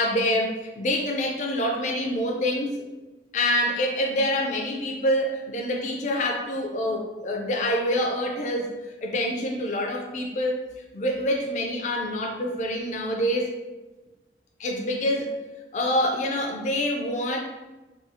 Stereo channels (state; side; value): normal; both; correlation 0.13